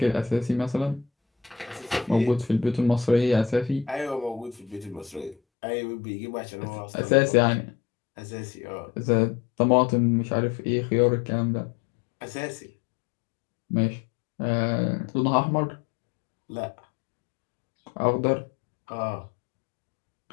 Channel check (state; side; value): drops out; right; at 5.4 s